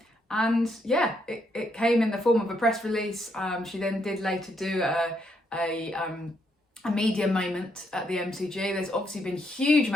And yeah, it came in the form of a press release. She then did later do a media moment at the MCG. There's obviously been a huge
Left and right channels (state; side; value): normal; both; correlation 0.76